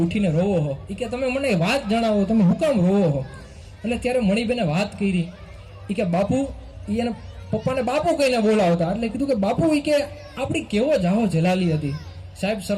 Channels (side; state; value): both; identical; correlation 1.00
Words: ઉઠીને રોવો છો, એ કે તમે મને વાત જણાવો, તમે હું કામ રોવો છો. એટલે ત્યારે મણીબેને વાત કરી, એ કે બાપુ, એને પપ્પાને બાપુ કહીને બોલાવતા, એટલે કીધું કે બાપુ એ કે આપણી કેવો જાહો જલાલી હતી. સાહેબ